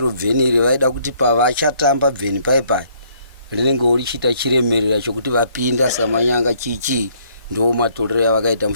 bveni iri vaida kuti pavachatamba bveni paipai rinenge richiita chiremerera chokuti vapinda samanyanga chichi. Ndo matorero avakaita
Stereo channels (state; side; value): inverted; both; correlation -0.65